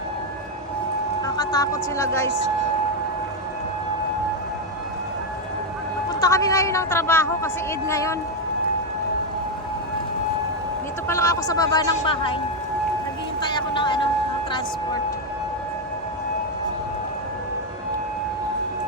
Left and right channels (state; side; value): normal; both; correlation 0.05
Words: Nakakatakot sila, guys. Punta kami ngayon ng trabaho kasi Eid ngayon. Dito pa lang ako sa baba ng bahay. Naghihintay ako ng ng transport.